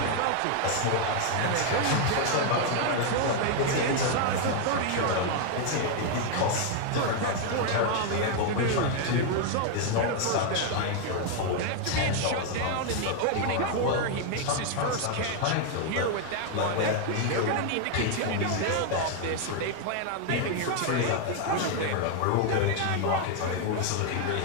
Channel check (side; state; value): both; different; correlation 0.00